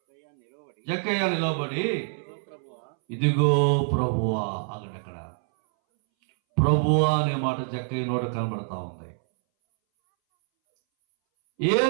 జక్కయ్య నిలబడి, ఇదిగో ప్రభువా. అక్కడ ప్రభువా అనే మాట జక్కయ్య నోట కనబడతా ఉంది.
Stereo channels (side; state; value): left; silent; 61 dB below the other